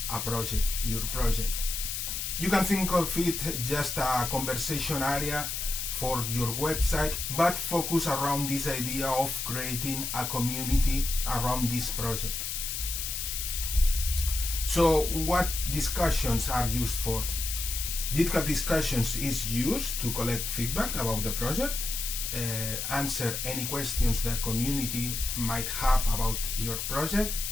a project, your project. You can think of it just a conversation area for your website, but focus around this idea of creating a community around this project. So what discussions are used for? GitHub Discussions is used to collect feedback about the project, answer any questions the community might have about your project,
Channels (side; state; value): left; noise; hiss, 3 dB below the sound